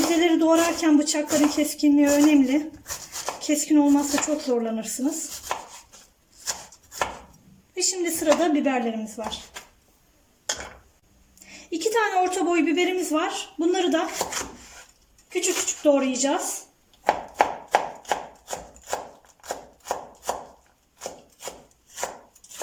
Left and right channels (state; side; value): identical; both; correlation 1.00